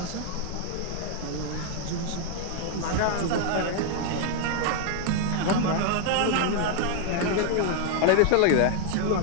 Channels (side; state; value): both; different; correlation 0.00